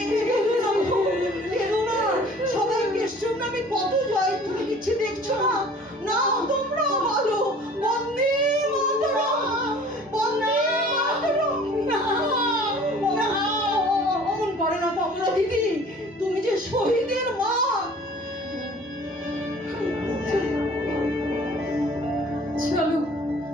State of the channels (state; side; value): normal; both; correlation 0.49